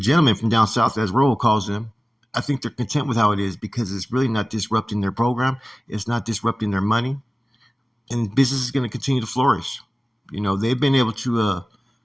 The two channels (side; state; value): both; normal; correlation 0.97